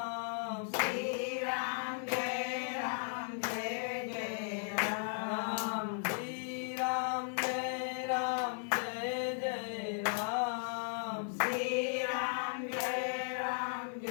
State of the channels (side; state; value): right; silent; 54 dB below the other